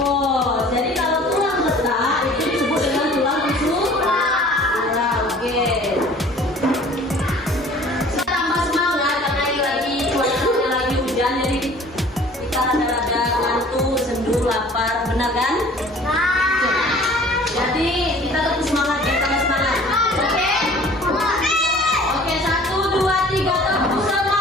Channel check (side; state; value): both; normal; correlation 0.49